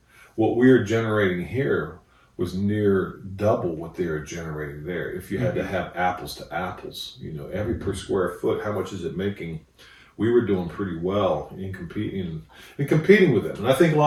what we were generating here was near double what they were generating there. If you had to have apples to apples, you know, every per square foot, how much is it making? We were doing pretty well in competing with them. And I think a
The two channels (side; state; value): both; identical; correlation 1.00